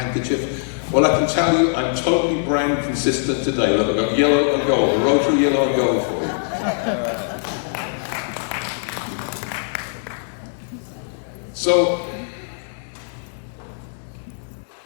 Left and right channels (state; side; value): silent; right; digital silence